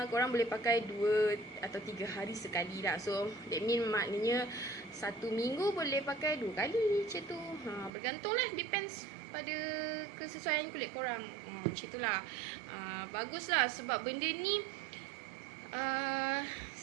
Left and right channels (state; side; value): drops out; left; at 7.9 s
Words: korang boleh pakai 2 atau 3 hari sekali lah. So that mean maknanya 1 minggu boleh pakai 2 kali macam tu. Bergantung lah, depends pada kesesuaian kulit korang. Macam tu lah. Bagus lah sebab benda ni